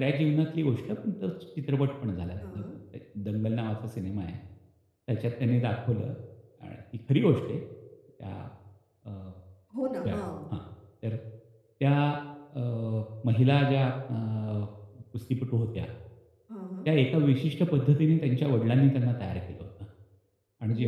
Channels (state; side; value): identical; both; correlation 1.00